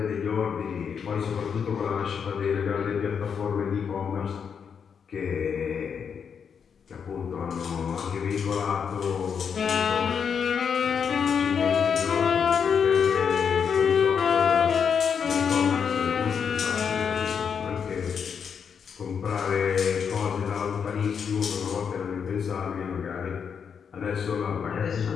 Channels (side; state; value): right; quieter; 6.9 dB